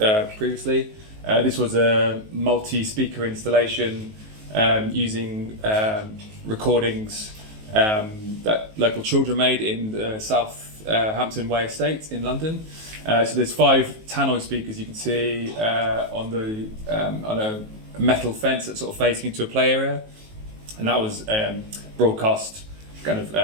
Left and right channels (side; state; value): left; late; 19 ms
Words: previously. This was a multi-speaker installation using recordings that local children made in the South Hampton Way estate in London. So there's 5 tannoy speakers you can see on a metal fence that's sort of facing into a play area, and that was broadcast kind